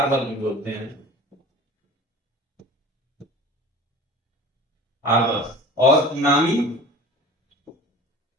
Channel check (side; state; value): both; normal; correlation 0.40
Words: भी बोलते हैं, हार्बर। और नामी